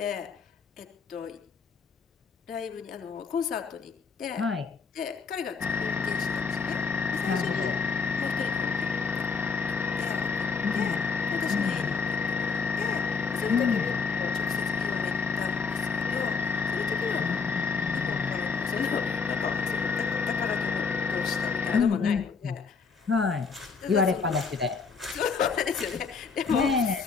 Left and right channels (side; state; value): right; quieter; 5.2 dB